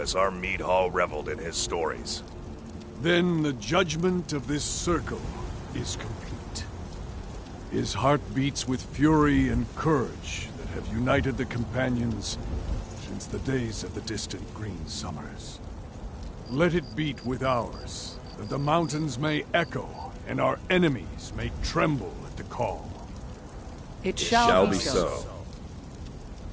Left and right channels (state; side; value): identical; both; correlation 1.00